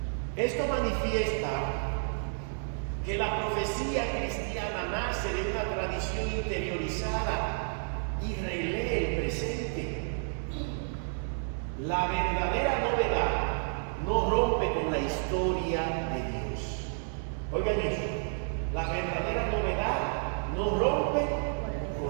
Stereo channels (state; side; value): silent; left; digital silence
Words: Esto manifiesta que la profecía cristiana nace de una tradición interiorizada y relee el presente. La verdadera novedad no rompe con la historia de Dios. Oigan eso, la verdadera novedad no rompe